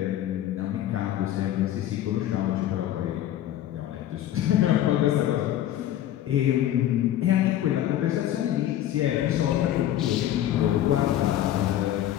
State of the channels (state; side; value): quieter; right; 12.3 dB